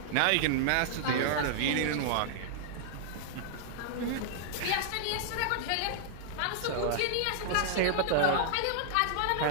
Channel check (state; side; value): different; both; correlation -0.01